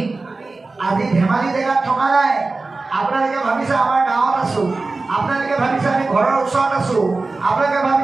আজি ধেমালি জেগাত থকা নাই। আপোনালোকে ভাবিছে আমাৰ গাঁৱত আছো, আপোনালোকে ভাবিছে আমি ঘৰৰ ওচৰত আছো, আপোনালোকে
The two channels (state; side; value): quieter; left; 3.6 dB